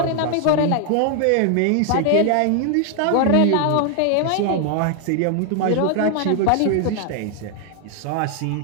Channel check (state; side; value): different; both; correlation 0.00